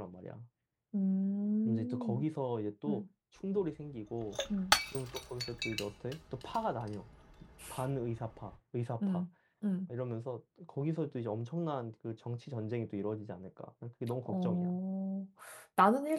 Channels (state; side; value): identical; both; correlation 1.00